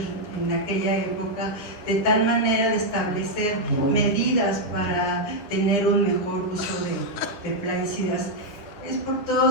en aquella época, de tal manera de establecer medidas para tener un mejor uso de plaguicidas. Es por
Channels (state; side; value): late; right; 9.9 ms